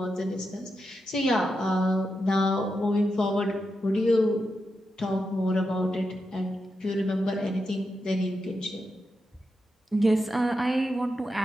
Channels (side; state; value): both; normal; correlation 0.87